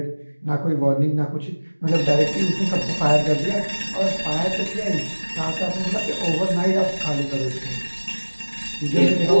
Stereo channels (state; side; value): inverted; both; correlation -1.00